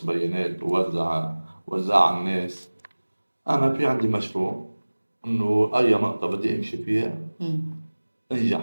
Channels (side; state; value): both; inverted; correlation -1.00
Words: بيانات ووزع على الناس. أنا في عندي مشروع، إنه أي نقطة بدي أمشي فيها مم.